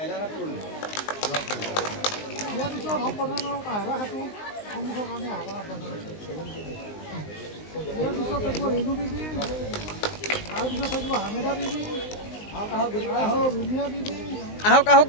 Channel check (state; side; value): late; right; 19 ms